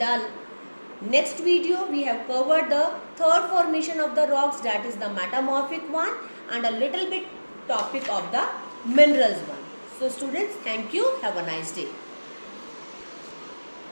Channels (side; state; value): both; inverted; correlation -1.00